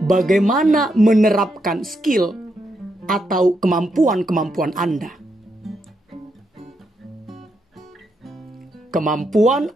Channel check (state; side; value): normal; both; correlation 0.81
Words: Bagaimana menerapkan skill atau kemampuan Anda. Kemampuan